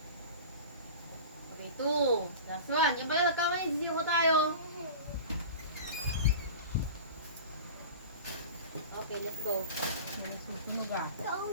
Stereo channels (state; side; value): inverted; both; correlation -0.35